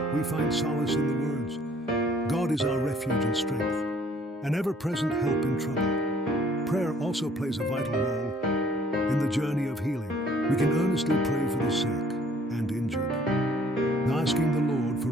we find solace in the words, "God is our refuge and strength, an ever-present help in trouble." Prayer also plays a vital role in the journey of healing. We can earnestly pray for the sick and injured, asking the Lord for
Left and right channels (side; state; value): both; normal; correlation 0.59